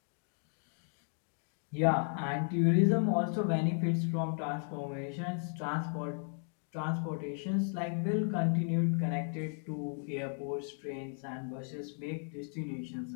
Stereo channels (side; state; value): right; silent; 54 dB below the other